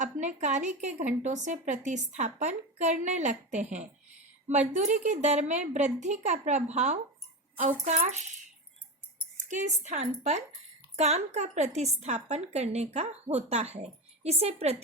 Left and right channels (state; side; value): normal; both; correlation 0.21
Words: अपने कार्य के घंटों से प्रतिस्थापन करने लगते हैं। मजदूरी की दर में वृद्धि का प्रभाव अवकाश के स्थान पर काम का प्रतिस्थापन करने का होता है। इसे